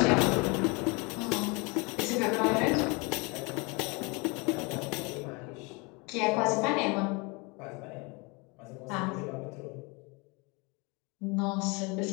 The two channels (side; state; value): right; quieter; 28.6 dB